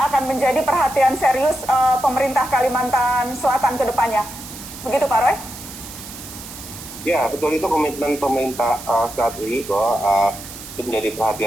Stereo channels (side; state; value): right; noise; hiss, 13 dB below the sound